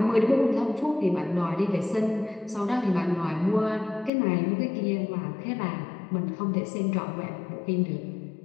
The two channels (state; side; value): drops out; right; at 4.1 s